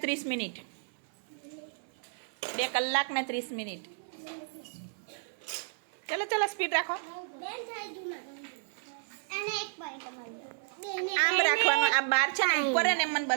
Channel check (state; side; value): silent; left; 56 dB below the other